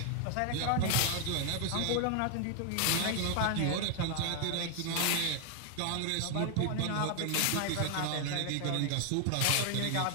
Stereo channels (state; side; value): different; both; correlation 0.00